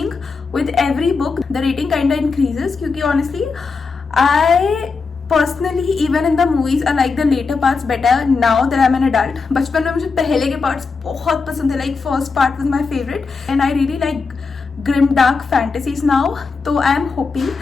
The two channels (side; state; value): right; quieter; 4.7 dB